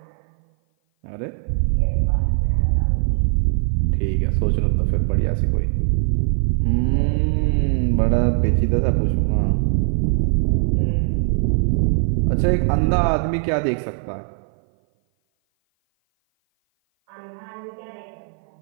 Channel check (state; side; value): silent; left; 56 dB below the other